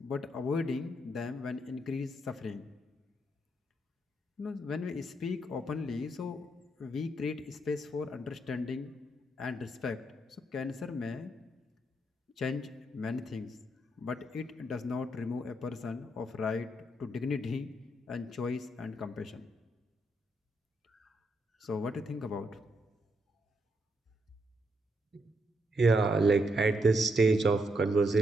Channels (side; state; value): both; normal; correlation 0.78